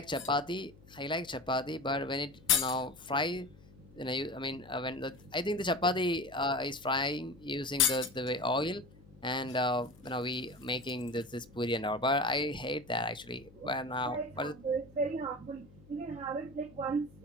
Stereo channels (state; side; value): noise; left; hum, 23 dB below the sound